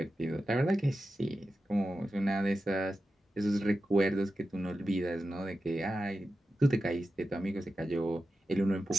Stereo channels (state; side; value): normal; both; correlation 0.91